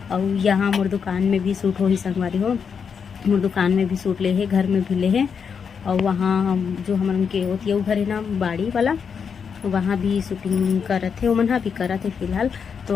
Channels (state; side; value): quieter; right; 6.5 dB